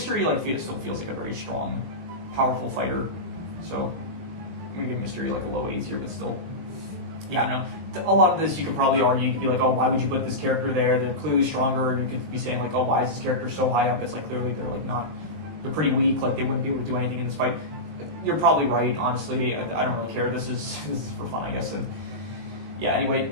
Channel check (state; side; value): late; left; 19 ms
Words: E like still feels like a very strong, powerful fighter, so I'm gonna give Mr. E like a low A tier, but still, yeah, I don't know. A lot of this you could probably argue. You could be like, oh, why would you put this character there? They're clearly stronger. You could be saying like, oh, why is this character so high up? It's like clearly they're like not, they're pretty weak. Like they wouldn't be able to do anything in this fight. You're probably right, honestly. I don't really care. This is for fun, I guess. And yeah,